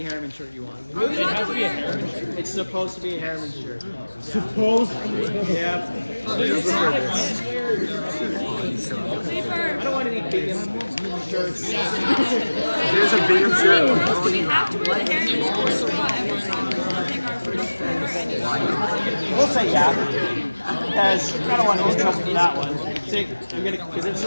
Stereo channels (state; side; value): inverted; both; correlation -1.00